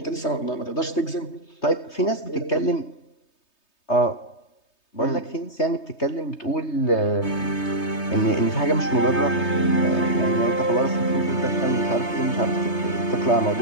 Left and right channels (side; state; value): right; late; 3.2 ms